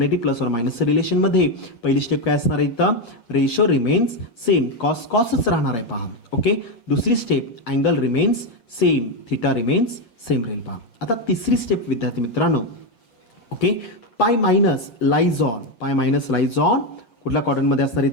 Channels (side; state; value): right; late; 8.9 ms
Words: + or -चं रिलेशन मध्ये पहिली स्टेप काय असणार आहे इथं रेशो रिमेन्स सेम. कॉसच राहणार आहे पहा. ओके, दुसरी step angle remains same. Theta remains same राहील पहा. आता तिसरी स्टेप विद्यार्थी मित्रांनो ओके π- लाईज ऑन कुठल्या क्वाड्रंटमध्ये असणार